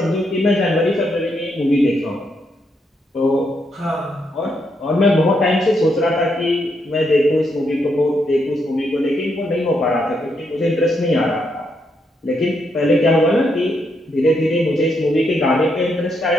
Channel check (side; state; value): both; normal; correlation 0.78